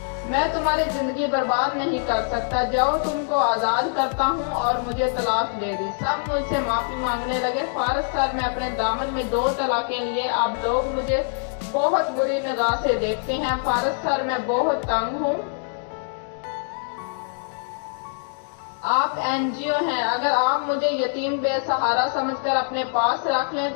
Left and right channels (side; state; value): right; silent; digital silence